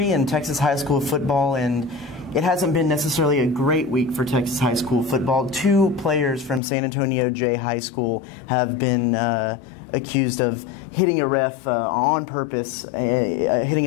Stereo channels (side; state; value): right; drops out; at 6.6 s